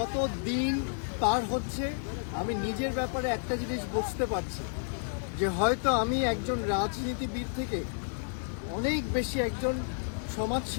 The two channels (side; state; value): right; silent; digital silence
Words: দিন পার হচ্ছে আমি নিজের ব্যাপারে একটা জিনিস বুঝতে পারছি যে হয়তো আমি একজন রাজনীতিবিদ থেকে অনেক বেশি একজন